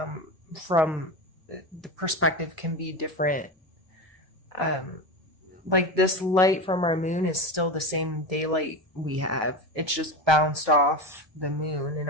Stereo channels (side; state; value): both; normal; correlation 0.22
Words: from the perspective can be different. Like, this light from our moon is still the same daylight we have. It's just bounced off the moon and